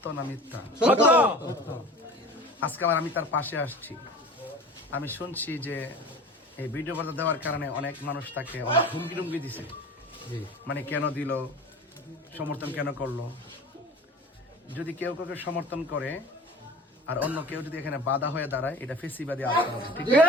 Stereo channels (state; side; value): normal; both; correlation 0.40